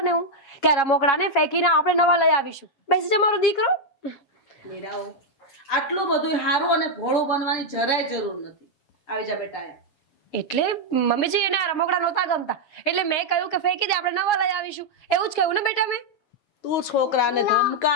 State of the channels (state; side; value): late; right; 7.2 ms